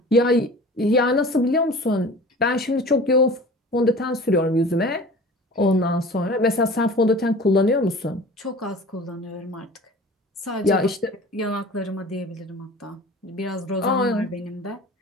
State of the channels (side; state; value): both; normal; correlation 0.41